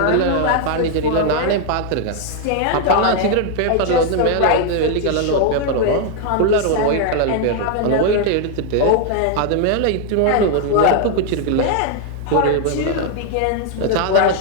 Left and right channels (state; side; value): different; both; correlation 0.00